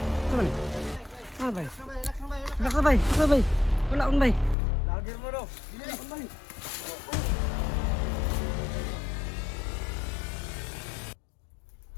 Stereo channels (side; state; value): right; drops out; at 4.5 s